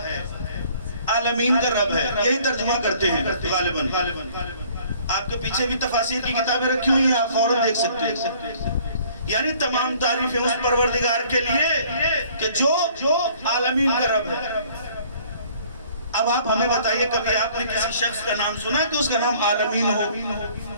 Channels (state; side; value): inverted; both; correlation -0.57